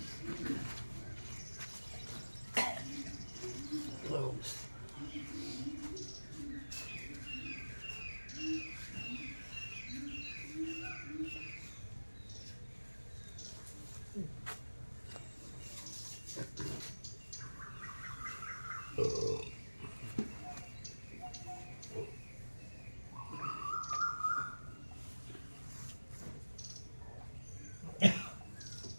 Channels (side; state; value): both; inverted; correlation -1.00